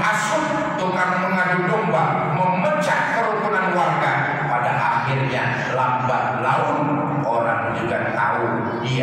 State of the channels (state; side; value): identical; both; correlation 1.00